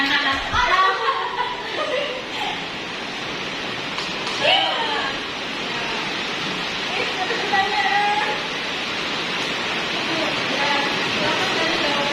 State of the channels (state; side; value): identical; both; correlation 1.00